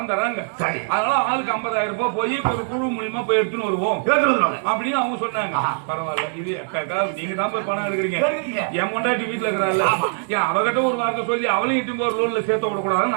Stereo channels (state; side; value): silent; left; digital silence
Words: தராங்க. அதனால ஆளுக்கு 50,000 ரூபாய் போய் ஒரு குழு மூலியமா போய் எடுத்துன்னு வருவோம் அப்படின்னு அவங்க சொன்னாங்க. பரவாயில்ல இது நீங்க தான் போய் பணம் எடுக்கிறீங்க என் பொண்டாட்டி வீட்டுல இருக்கிறாள் ஏன் அவகிட்ட ஒரு வார்த்தை சொல்லி அவளையும் இட்டு ஒரு லோன்ல சேர்த்த விடக்கூடாதுன்னு